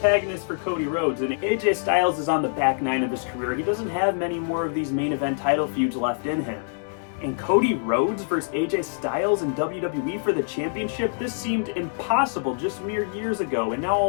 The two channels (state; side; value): silent; right; digital silence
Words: for Cody Rhodes, and AJ Styles is on the back nine of his career. He doesn't have many more of these main event title feuds left in him. And Cody Rhodes versus AJ Styles in WWE for the championship, this seemed impossible just mere years ago, and now